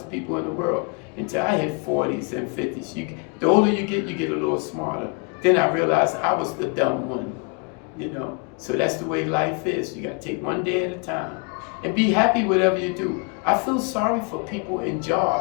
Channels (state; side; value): quieter; right; 35.4 dB